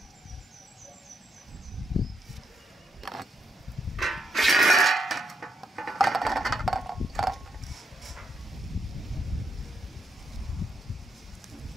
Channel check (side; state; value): both; normal; correlation 0.78